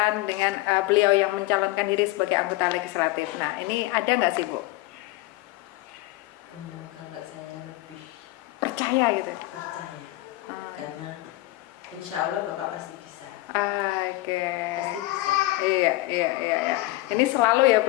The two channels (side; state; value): right; quieter; 19.1 dB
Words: dengan beliau yang mencalonkan diri sebagai anggota legislatif. Nah, ini ada nggak sih, Bu? Kalau saya lebih percaya gitu. Percaya. Karena insya Allah Bapak pasti bisa. Pasti bisa. Iya. Ini selalu ya